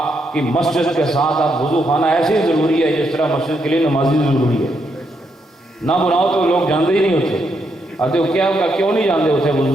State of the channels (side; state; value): both; normal; correlation 0.79